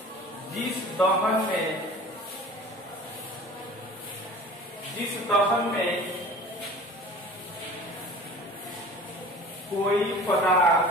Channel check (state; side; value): normal; both; correlation 0.42